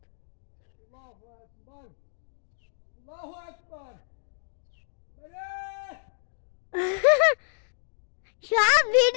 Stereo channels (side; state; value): right; silent; digital silence